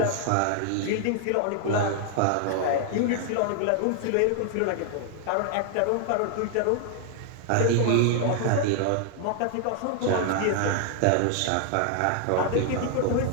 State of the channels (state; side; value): different; both; correlation 0.00